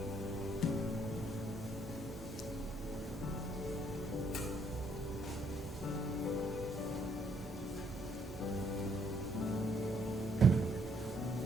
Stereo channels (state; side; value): normal; both; correlation 0.69